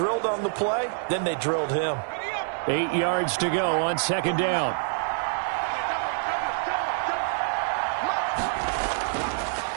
on the play, then they drilled him. 8 yards to go on 2nd down.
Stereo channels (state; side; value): silent; left; 61 dB below the other